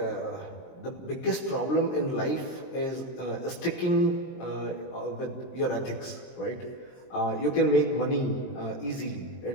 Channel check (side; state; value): right; late; 23 ms